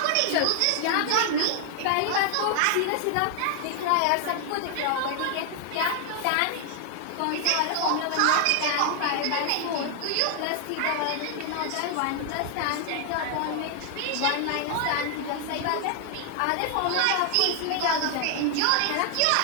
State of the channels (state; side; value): different; both; correlation 0.00